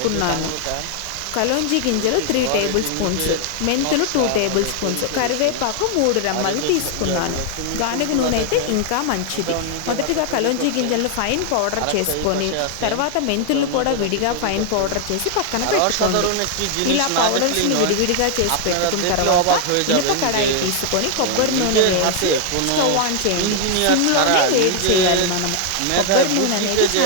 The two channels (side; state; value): both; different; correlation 0.00